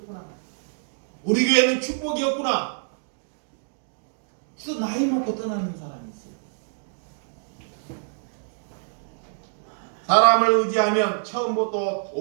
우리 교회는 축복이 없구나. 그래서 나이 먹고 떠나는 사람이 있어요. 사람을 의지하면 처음부터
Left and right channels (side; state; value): left; silent; digital silence